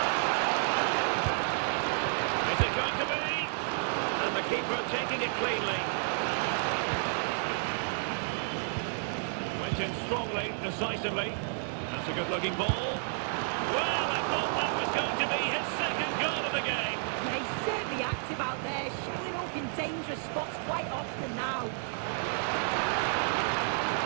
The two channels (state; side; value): silent; left; 55 dB below the other